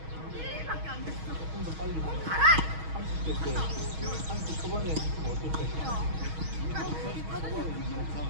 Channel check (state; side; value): late; left; 6.3 ms